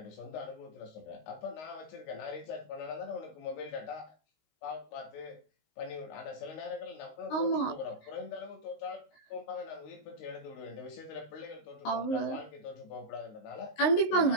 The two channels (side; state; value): right; late; 19 ms